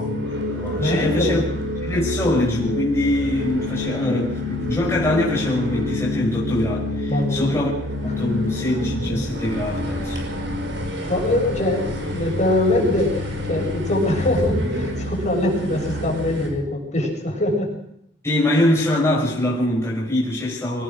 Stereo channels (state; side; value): normal; both; correlation 0.57